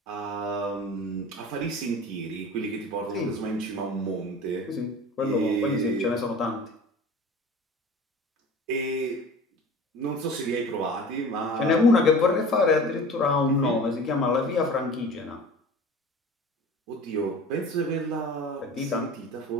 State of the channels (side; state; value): both; normal; correlation 0.40